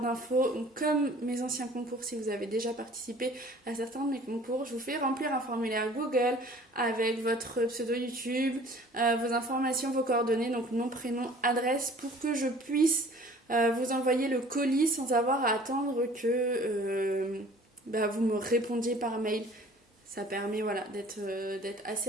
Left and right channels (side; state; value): both; normal; correlation 0.50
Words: Comme mes anciens concours, si vous avez déjà participé à certains de mes concours, je vous fais remplir un formulaire Google avec votre pseudo YouTube, vos informations, vos coordonnées, donc nom, prénom, adresse, pour que je puisse vous envoyer le colis sans avoir à attendre que vous me répondiez par mail. Ça permet d'être